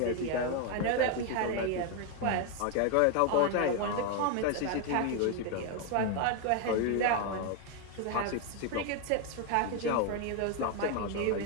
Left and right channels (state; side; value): different; both; correlation 0.01